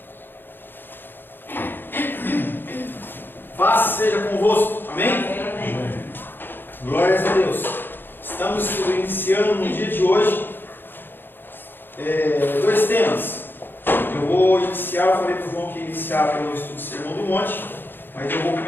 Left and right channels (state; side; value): late; right; 0.098 ms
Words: Paz seja convosco. Amém? Glórias a Deus. Estamos iniciando no dia de hoje dois temas. Eu vou iniciar, eu falei para o João que ia iniciar pelo estudo do Sermão do Monte, mas eu vou